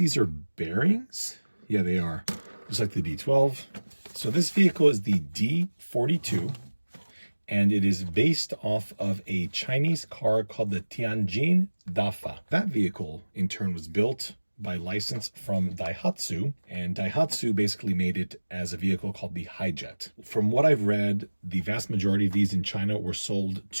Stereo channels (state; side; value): inverted; both; correlation -1.00